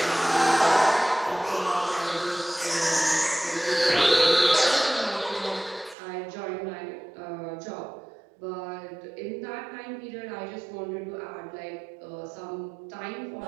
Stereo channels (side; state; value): left; drops out; at 6.0 s